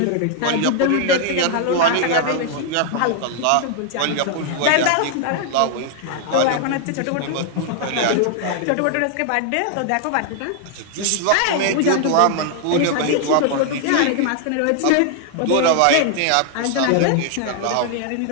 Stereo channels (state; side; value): different; both; correlation 0.00